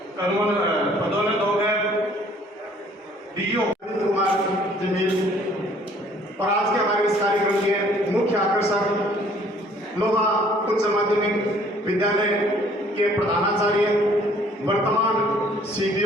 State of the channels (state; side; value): normal; both; correlation 0.58